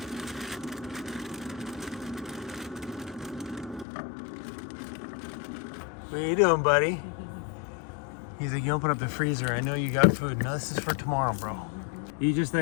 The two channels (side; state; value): right; drops out; at 3.9 s